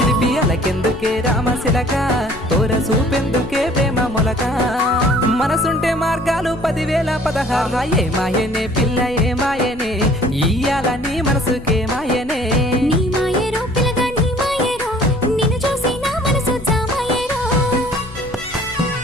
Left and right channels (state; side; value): noise; left; rumble, 18 dB below the sound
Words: కెందుకే రామశిలక తోర సూపెందుకే ప్రేమ మొలక మనసుంటే మార్గాలు 10,016 ఏ మాయనే పిల్ల ఏ మాయనే ఇయ్యాల నీ మనసుకే మాయనే నీ మాయరో పిల్లగా నీ మాయరో నిన్ను చూసి నా మనసు జామాయరో